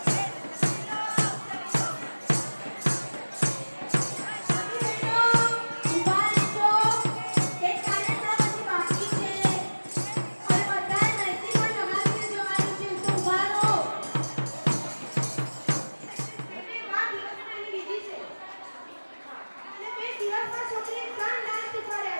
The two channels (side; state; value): both; inverted; correlation -1.00